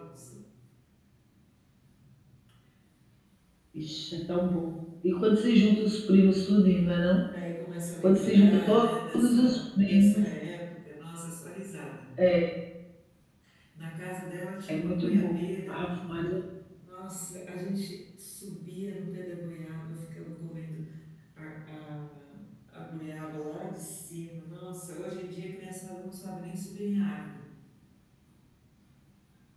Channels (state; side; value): identical; both; correlation 1.00